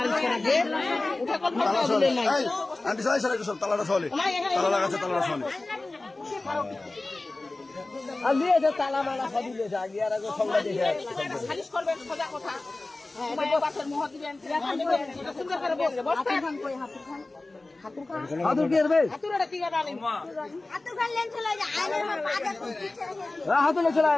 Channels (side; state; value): right; quieter; 3.1 dB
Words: তালা চল্লিশ আন্টি সাই সারা সব তালাটা চল্লিশ তালা লাগাচ্ছে তালাটা চল্লিশ তালা মালা সবই দিয়েছে আগে আর আগে সব দিয়েছে খালিশ করবেন সোজা কথা বাসের মোহ দিবেন সুন্দর করে বলবে বসতে খান কই হাতুর খান হাতুর কি করবে হাতুরটা কি করে আনেন হাতুর খান লেন চলে যায় আইনের মা পাজা হাতুর চলে